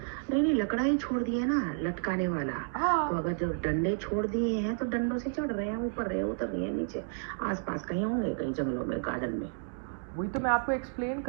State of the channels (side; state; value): left; silent; digital silence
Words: नहीं, लकड़ा ही छोड़ दिया ना, लटकाने वाला. हाँ. तो अगर जो डंडे छोड़ दिए हैं तो डंडों से चढ़ रहे हैं, ऊपर रहे, उतर रहे हैं, नीचे आसपास कहीं होंगे, कहीं जंगलों में, गार्डन में. वही तो मैं आपको एक्सप्लेन